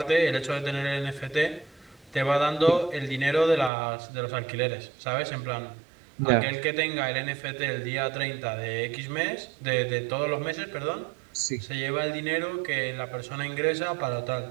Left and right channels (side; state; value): left; drops out; at 3.7 s